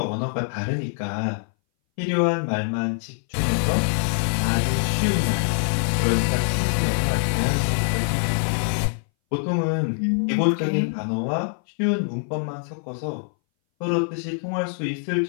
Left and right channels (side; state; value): right; silent; 60 dB below the other